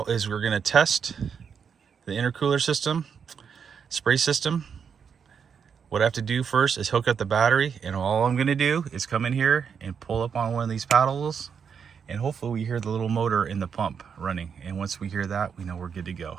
is we're going to test the intercooler system, spray system. What I have to do first is hook up the battery, and all I'm gonna do is come in here and pull up on one of these paddles, and hopefully we hear the little motor in the pump running. And once we hear that, we know we're good to go.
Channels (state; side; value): quieter; left; 6.8 dB